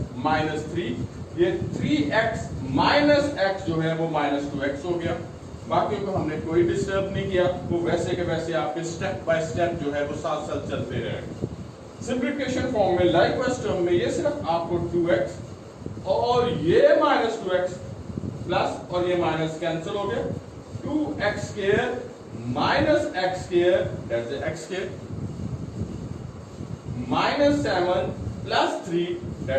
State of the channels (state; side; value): identical; both; correlation 1.00